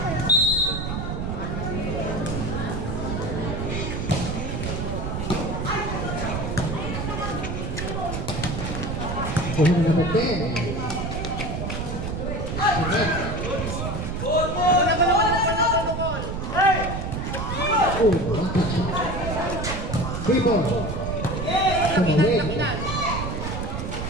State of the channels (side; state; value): right; noise; rumble, 3 dB below the sound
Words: Kuhin number 10. Oh, one touch. 3 ball. Tumawid.